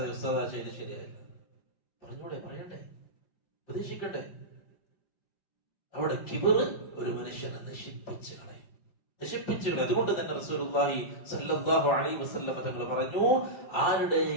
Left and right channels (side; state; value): right; late; 5.7 ms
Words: ഉസ്താദാ ചെയ്ത് ശരിയായില്ല, പറഞ്ഞൂടെ, പറയണ്ടേ, ഉപദേശിക്കട്ടെ. അവിടെ കിബറ് ഒരു മനുഷ്യനെ നശിപ്പിച്ചു കളയും. അതുകൊണ്ട് തന്നെ റസൂലുള്ളാഹി സ്വല്ലല്ലാഹു അലൈഹി വസല്ലം തങ്ങൾ പറഞ്ഞു,